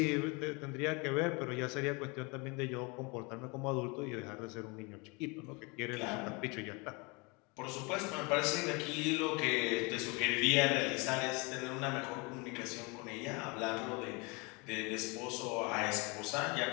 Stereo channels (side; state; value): right; quieter; 28.9 dB